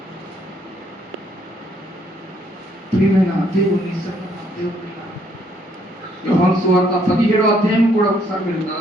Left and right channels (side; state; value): both; normal; correlation 0.68